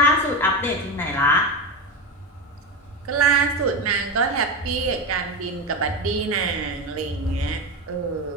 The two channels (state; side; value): normal; both; correlation 0.18